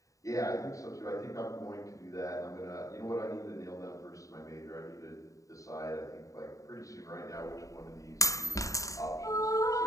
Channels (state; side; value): late; right; 0.16 ms